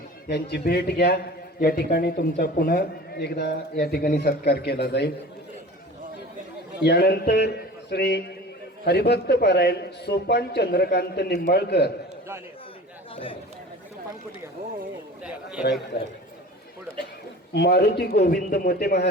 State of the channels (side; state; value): both; normal; correlation 0.39